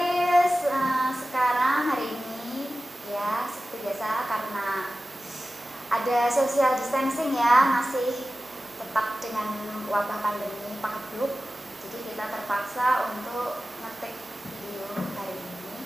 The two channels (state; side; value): normal; both; correlation 0.95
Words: Sekarang hari ini ya seperti biasa karena ada social distancing ya, masih tetap dengan wabah pandemi Pak. Jadi kita terpaksa untuk ngetik video hari